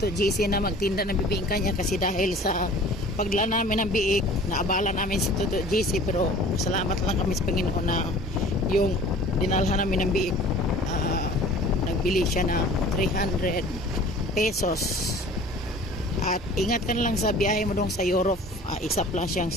GC na magtinda ng bibingka niya kasi dahil sa pagdala namin ng biik, naabala namin si Toto GC pero salamat lang kami sa Panginoon na yung dinalhan namin ng biik, nagbili siya na 300 pesos. At ingat ka na lang sa biyahe mo dong sa Europe, isa lang siyang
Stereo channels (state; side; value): normal; both; correlation 0.45